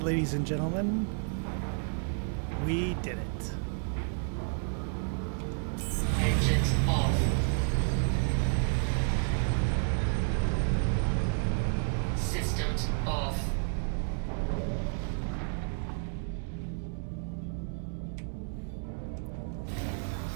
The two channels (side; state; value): left; silent; 57 dB below the other